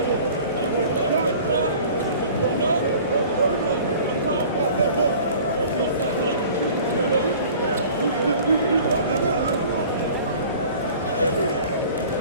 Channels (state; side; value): inverted; both; correlation -0.46